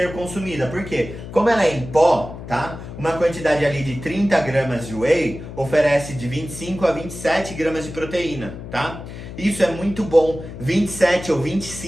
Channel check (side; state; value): left; noise; hum, 11 dB below the sound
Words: consumida. Por quê? Como ela é em pó, tá? Uma quantidade ali de 30 gramas de whey oferece de 25 a 27 gramas de proteína, tá? Isso é muito bom. 27 ou